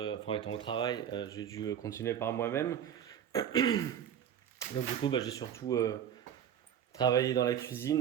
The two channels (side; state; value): left; quieter; 9.3 dB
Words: enfin étant au travail, j'ai dû continuer par moi-même. Donc du coup, j'ai surtout travaillé dans la